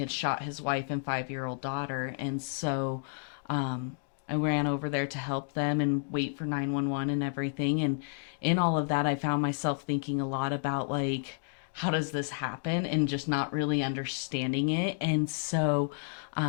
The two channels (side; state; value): right; silent; digital silence